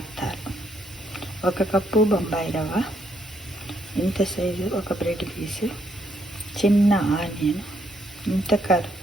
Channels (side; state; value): both; normal; correlation 0.73